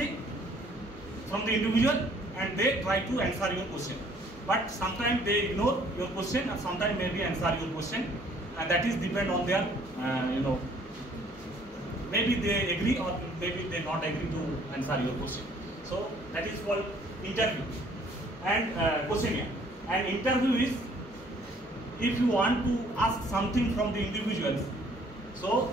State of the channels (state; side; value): normal; both; correlation 0.59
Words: from the individual and they try to answer your question, but sometime they ignore your question আর sometime may be answer your question, and that is depend on their maybe they agree or maybe they not agree to answer your question. So that is called interview and questionnaire. And interview is if you want to ask something from the individuals, so